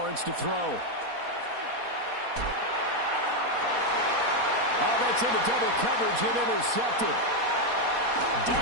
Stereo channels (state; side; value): late; left; 4.2 ms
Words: to throw. Oh, that's into double coverage and intercepted.